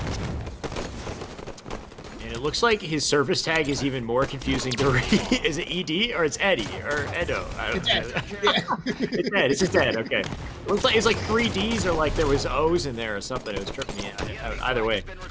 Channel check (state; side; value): identical; both; correlation 1.00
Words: And it looks like his service tag is even more confusing to read. Is it ED or it's Eddie or Edo? I don't know. It's Ed. It's just Ed. Okay. It looks like it's like 3 Ds or like there was O's in there or something. It was tripping me out. Either way,